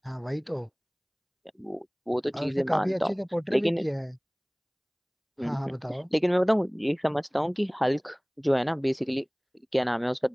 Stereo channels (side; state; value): both; identical; correlation 1.00